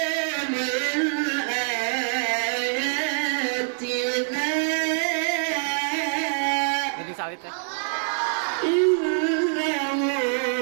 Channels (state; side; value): silent; left; 62 dB below the other